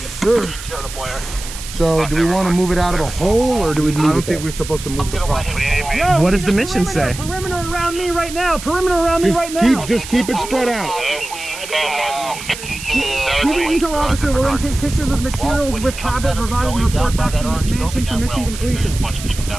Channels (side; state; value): right; noise; hiss, 11 dB below the sound